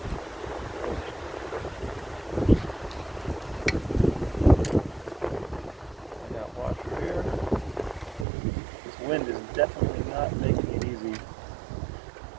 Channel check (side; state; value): left; drops out; at 8.2 s